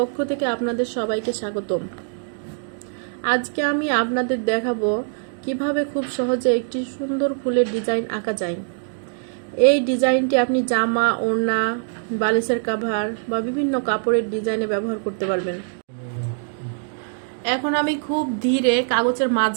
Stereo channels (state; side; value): silent; left; digital silence